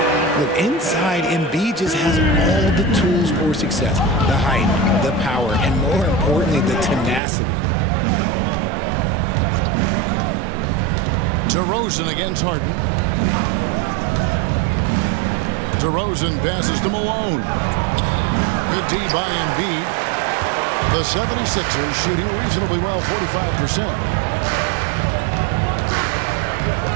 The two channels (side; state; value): left; drops out; at 7.2 s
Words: Look, inside, Embiid just has all the tools for success. The height, the power, and more importantly, the tenacity. DeRozan against Harden. DeRozan passes to Malone. Good D by Embiid. The 76ers shooting reasonably well, 45%.